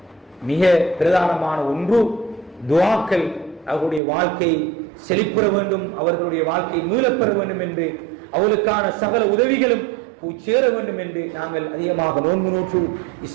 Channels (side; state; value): left; drops out; at 4.0 s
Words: மிக பிரதானமான ஒன்று துஆக்கள். அவர்களுடைய வாழ்க்கை செழிப்புற வேண்டும், அவர்களுடைய வாழ்க்கை மீளப்பெற வேண்டும் என்று, அவர்களுக்கான சகல உதவிகளும் சேர வேண்டும் என்று நாங்கள் அதிகமாக நோன்பு நோற்று